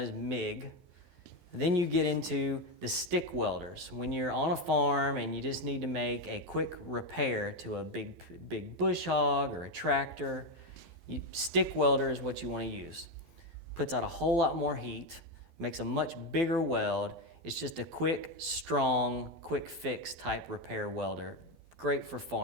MIG. Then you get into the stick welders. When you're on a farm and you just need to make a quick repair to a big bush hog or a tractor, stick welder is what you want to use. Puts out a whole lot more heat, makes a much bigger weld. It's just a quick, strong, quick fix type repair welder. Great for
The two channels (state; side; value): late; left; 17 ms